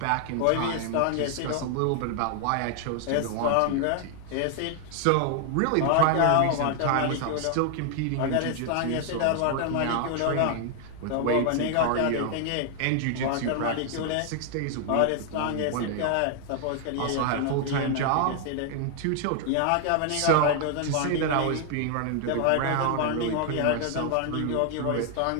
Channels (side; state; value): both; different; correlation 0.00